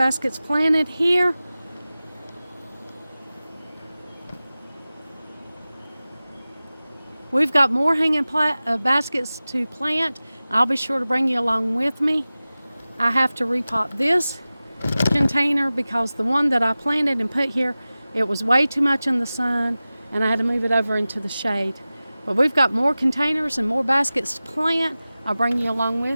planted here. We've got more hanging baskets to plant. I'll be sure to bring you along with me. I have to repot this container because the one that I planted and put here, it was way too much in the sun and I had to move it over into the shade. But we've got more containers and more baskets to plant. I'll bring you along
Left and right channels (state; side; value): inverted; both; correlation -0.97